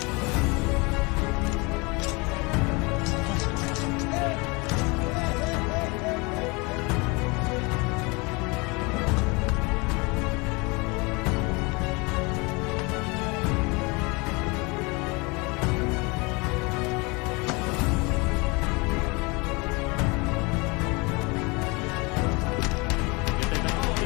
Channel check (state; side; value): quieter; right; 27.5 dB